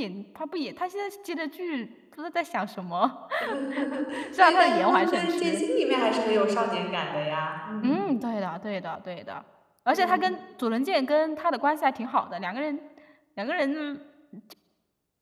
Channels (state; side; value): identical; both; correlation 1.00